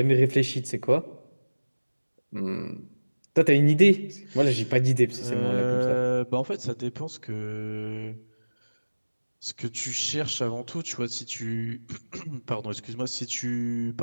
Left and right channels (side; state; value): both; inverted; correlation -1.00